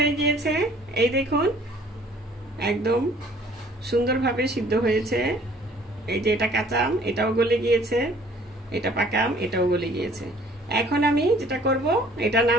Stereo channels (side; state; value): both; normal; correlation 0.56